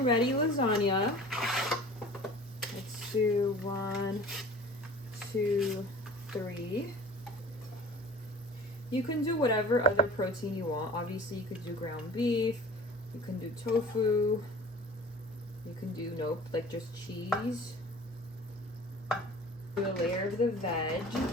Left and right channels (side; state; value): both; normal; correlation 0.43